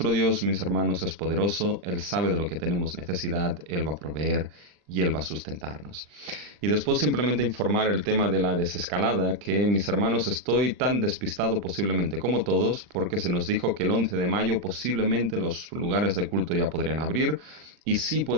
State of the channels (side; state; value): left; late; 40 ms